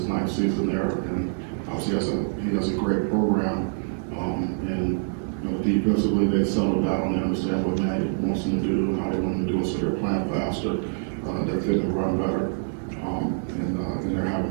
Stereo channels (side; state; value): left; silent; digital silence